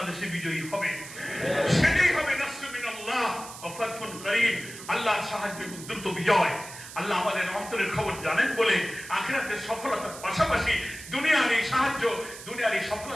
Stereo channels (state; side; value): noise; right; hiss, 14 dB below the sound